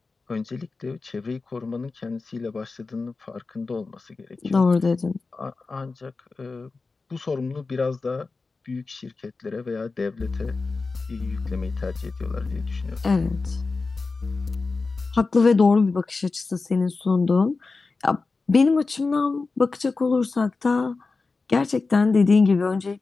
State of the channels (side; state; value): right; quieter; 4.0 dB